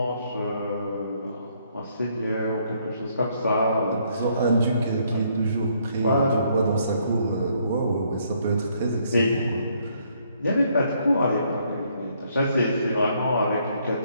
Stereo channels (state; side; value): inverted; both; correlation -0.69